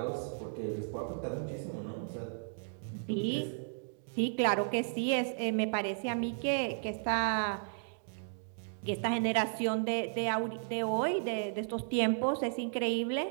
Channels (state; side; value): silent; left; digital silence